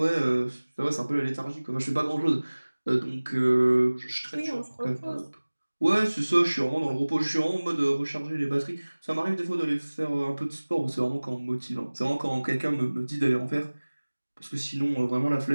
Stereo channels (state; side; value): inverted; both; correlation -1.00